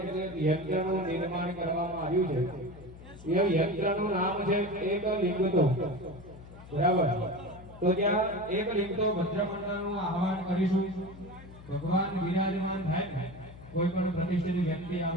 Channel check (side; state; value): left; noise; hum, 17 dB below the sound